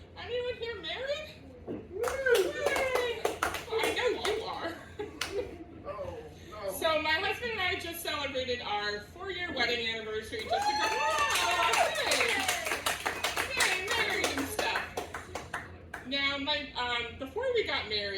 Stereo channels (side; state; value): both; identical; correlation 1.00